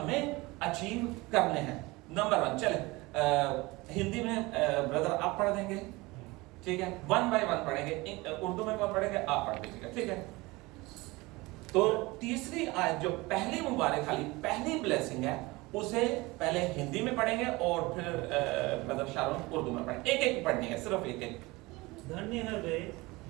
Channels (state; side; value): quieter; left; 22.4 dB